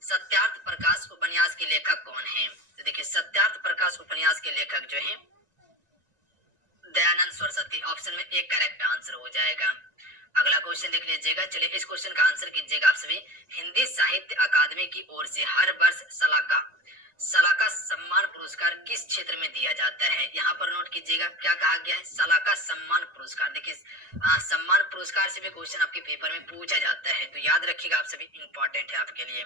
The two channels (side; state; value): left; late; 1.9 ms